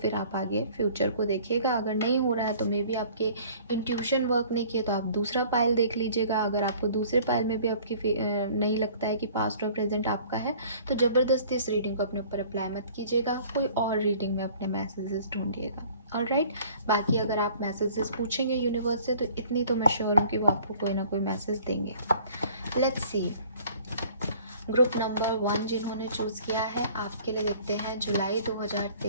आप आगे फ्यूचर को देखिएगा। अगर नहीं हो रहा है तो मे बी आपके इंट्यूशन वर्क नहीं किए तो आप दूसरा पाइल देख लीजिएगा। अगर आपको दूसरे पाइल में भी आपकी नहीं लगता है कि पास्ट और प्रेजेंट आपका है तो ज़बरदस्ती इस रीडिंग को अपने ऊपर अप्लाई मत कीजिएगा, कोई और रीडिंग में अपने मैसेजेस ढूंढिएगा। ऑलराइट, बाकी अगर आप मैसेजेस पूछेंगे यूनिवर्स से तो इतनी तो मैं श्योर हूँ कि वो आपको कोई ना कोई मैसेज देंगे। लेट्स सी, ग्रुप नंबर 1 जिन्होंने चूज़ किया है आपके लिए देखते हैं जुलाई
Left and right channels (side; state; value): both; inverted; correlation -0.52